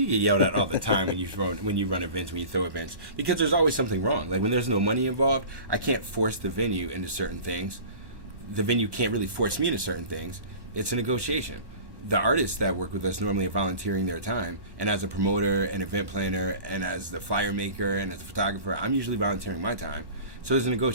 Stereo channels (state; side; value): late; left; 1.1 ms